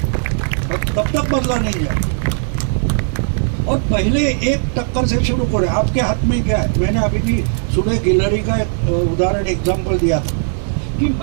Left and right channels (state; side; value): silent; left; digital silence